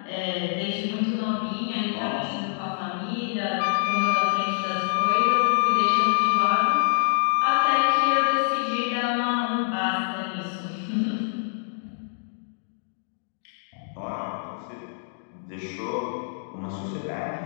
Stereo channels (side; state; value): right; silent; digital silence